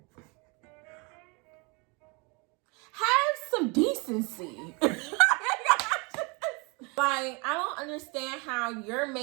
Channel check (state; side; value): quieter; left; 30.0 dB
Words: Have some decency. Like, I don't understand how you're